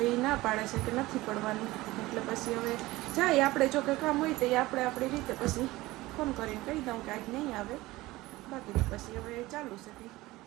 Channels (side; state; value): left; quieter; 19.1 dB